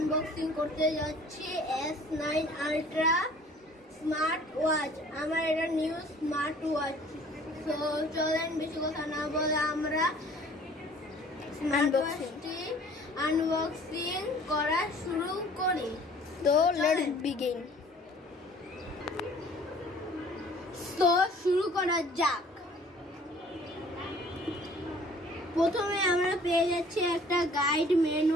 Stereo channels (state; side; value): normal; both; correlation 0.53